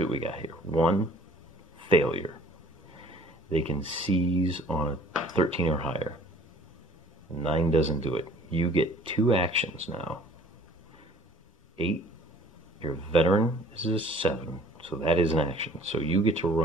what we got here. 1, failure. They can seize on a 13 or higher. 9 doesn't do it. You get 2 actions now. 8, your veteran is a 7, so that is an action. So you get to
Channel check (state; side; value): normal; both; correlation 0.52